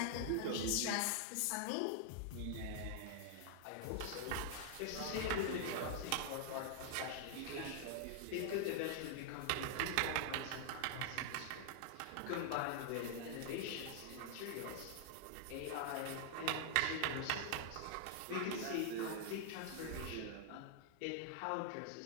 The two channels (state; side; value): different; both; correlation -0.01